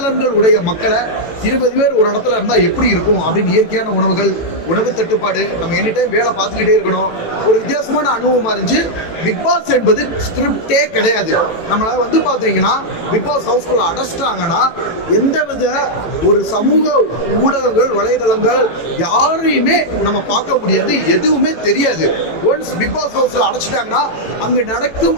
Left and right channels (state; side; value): late; right; 18 ms